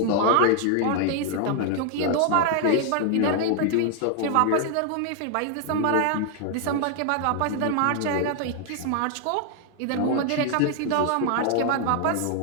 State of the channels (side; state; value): both; different; correlation 0.00